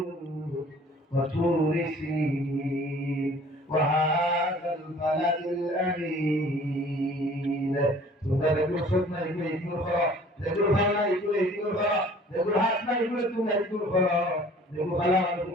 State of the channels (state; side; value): normal; both; correlation 0.51